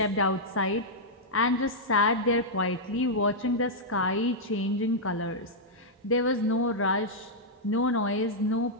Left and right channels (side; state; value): both; normal; correlation -0.07